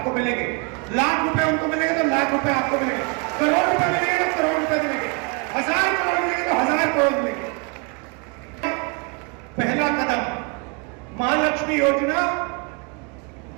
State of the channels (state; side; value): quieter; left; 31.8 dB